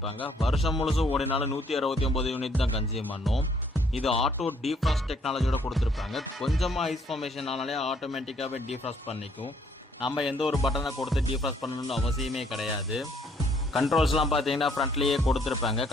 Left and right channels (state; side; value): normal; both; correlation 0.66